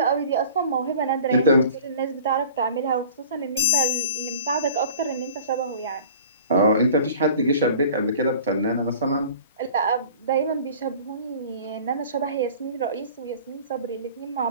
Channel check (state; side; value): inverted; both; correlation -0.44